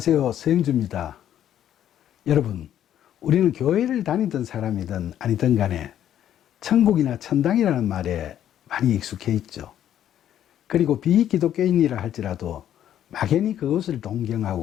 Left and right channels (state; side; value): quieter; right; 10.8 dB